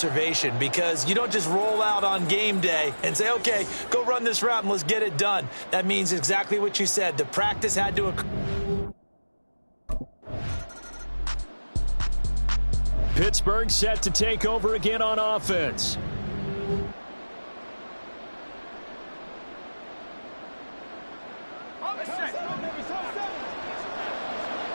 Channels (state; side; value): inverted; both; correlation -1.00